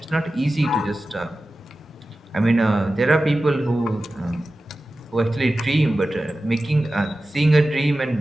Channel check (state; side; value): normal; both; correlation 0.94